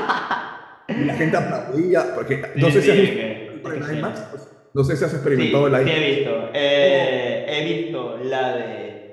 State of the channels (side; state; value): both; identical; correlation 1.00